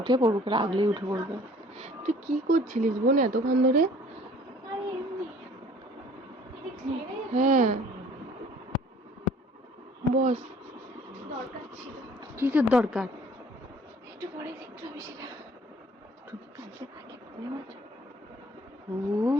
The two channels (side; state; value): both; normal; correlation 0.53